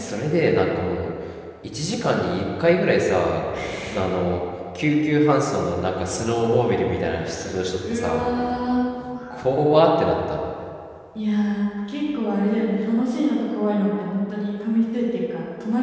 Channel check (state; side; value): identical; both; correlation 1.00